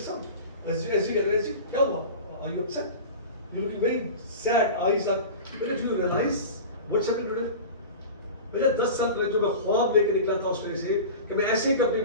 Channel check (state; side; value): inverted; both; correlation -0.33